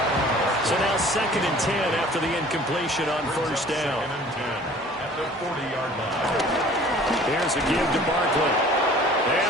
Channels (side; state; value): both; normal; correlation 0.49